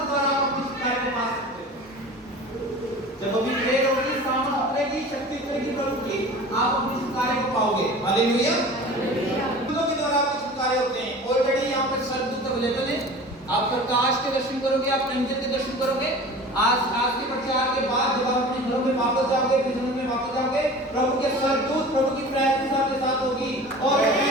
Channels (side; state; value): both; normal; correlation 0.39